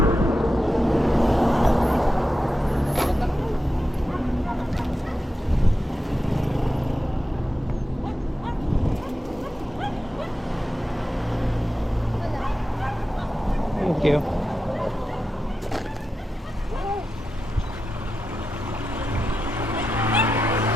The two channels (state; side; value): normal; both; correlation 0.90